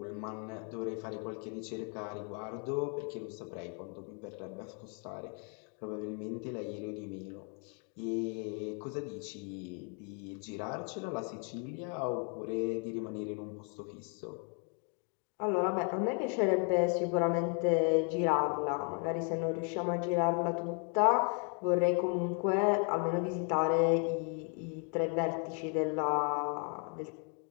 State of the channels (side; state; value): right; quieter; 39.7 dB